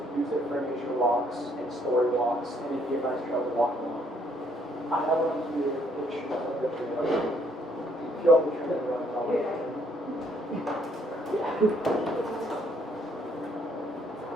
use it for nature walks and story walks, and it'd be a nice trail to walk along. I have one here, pictures of the trail. If you all can turn it around, I'll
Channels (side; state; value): both; normal; correlation 0.67